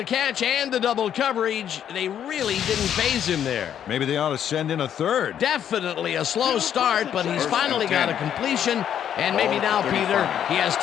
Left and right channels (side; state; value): right; quieter; 9.6 dB